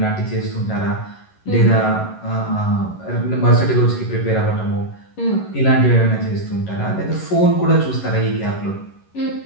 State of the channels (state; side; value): late; right; 11 ms